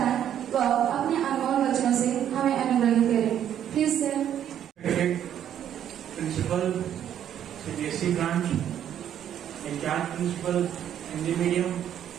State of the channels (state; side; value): quieter; left; 10.1 dB